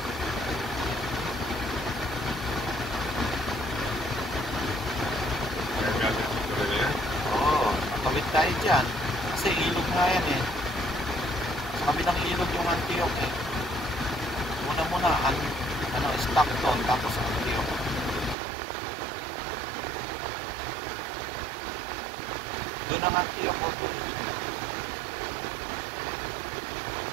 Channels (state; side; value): drops out; left; at 18.4 s